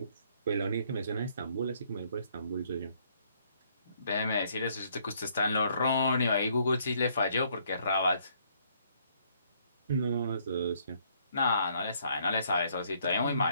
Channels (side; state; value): both; inverted; correlation -0.67